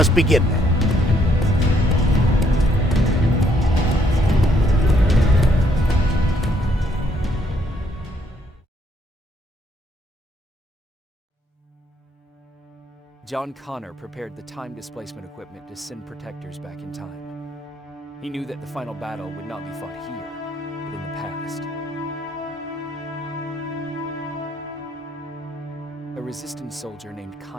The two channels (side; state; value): both; normal; correlation 0.70